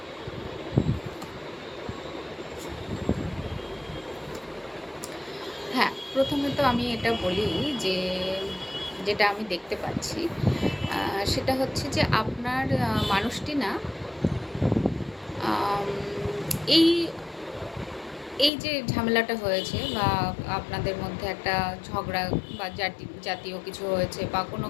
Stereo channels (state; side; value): drops out; right; at 18.5 s